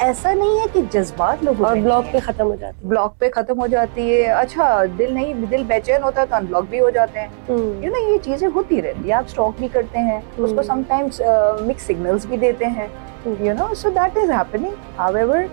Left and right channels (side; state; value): left; silent; digital silence